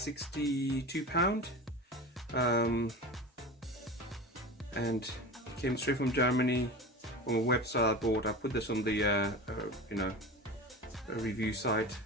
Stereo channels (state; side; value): normal; both; correlation 0.30